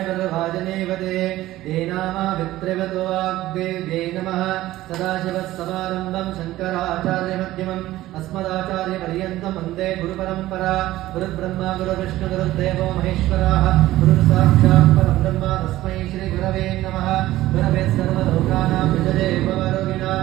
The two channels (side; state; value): left; quieter; 15.8 dB